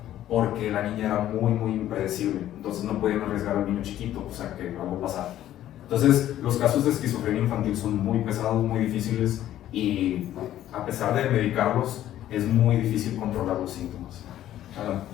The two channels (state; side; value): quieter; right; 12.6 dB